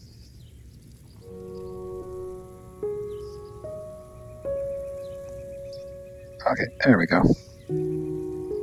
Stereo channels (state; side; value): identical; both; correlation 1.00